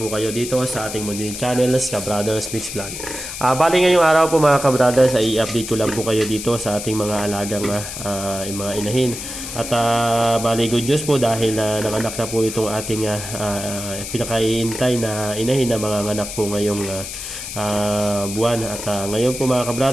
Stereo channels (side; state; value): left; noise; hiss, 8 dB below the sound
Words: kayo dito sa ating Mundin Channel, Ka-Brothers Mix Vlog. Bali ngayong araw po mga ka-brothers ay i-update ko lang po kayo dito sa ating mga alagang mga inahin. At bali good news po dahil nanganak na po itong ating pinakaiintay na inahin na mga anak po ngayong buwan. At ngayon po mga